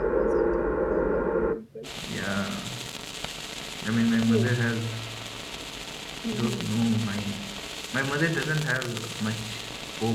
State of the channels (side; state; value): both; identical; correlation 1.00